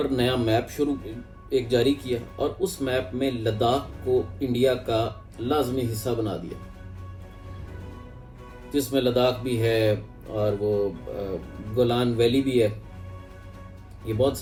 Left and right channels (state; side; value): identical; both; correlation 1.00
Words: नया मैप एक जारी किया और उस मैप में लद्दाख को इंडिया का लाजमी हिस्सा बना दिया, जिसमें लद्दाख भी है और वो गोलान वैली भी है। ये बहुत